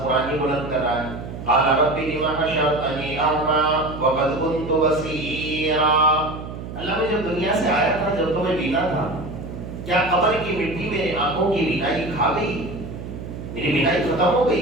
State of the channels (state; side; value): noise; right; hum, 10 dB below the sound